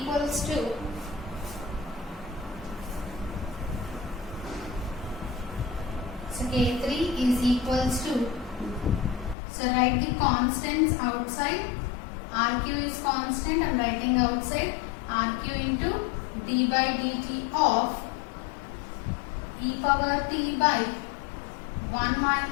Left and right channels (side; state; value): right; drops out; at 9.3 s